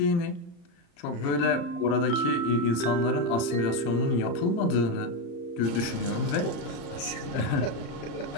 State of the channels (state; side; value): late; right; 35 ms